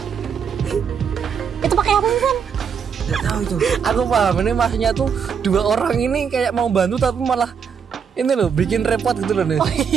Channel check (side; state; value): left; quieter; 6.9 dB